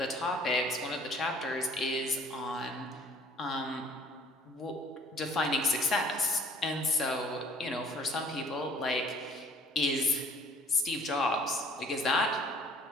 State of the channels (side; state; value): both; normal; correlation 0.53